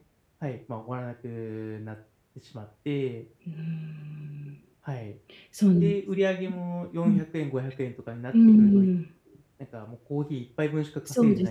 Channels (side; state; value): both; identical; correlation 1.00